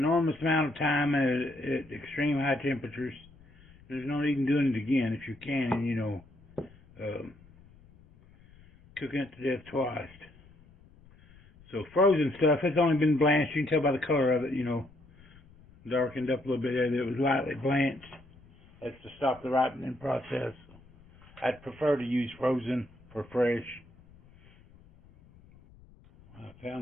amount of time at extreme high temperatures. There's no need in doing it again if you can, and you know, cooking it to death twice. So frozen stuff, it's only been blanched. You can tell by the color of it, you know, darkened up a little bit there that it was lightly blanched. That's to stop the ripening process. I'd prefer to use frozen for fresh. I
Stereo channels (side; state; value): left; noise; rumble, 26 dB below the sound